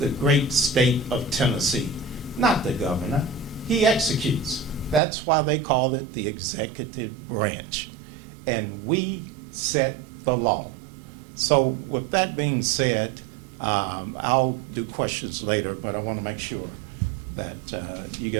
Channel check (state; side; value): drops out; left; at 5.0 s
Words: great state of Tennessee, not the governor. He executes. That's why they call it the executive branch. And we set the law. So with that being said, I'll do questions later, but I want to make sure that you